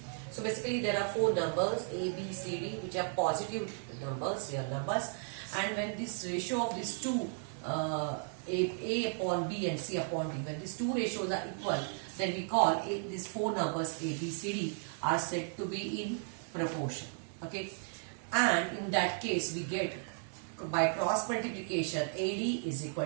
so basically there are four numbers A, B, C, D which are positive numbers, real numbers, and when this ratio of these two A upon B and C upon D, when these two ratios are equal, then we call these four numbers A, B, C, D are said to be in proportion. Okay, and in that case we get by cross multiplication AD is equal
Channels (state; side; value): silent; left; 54 dB below the other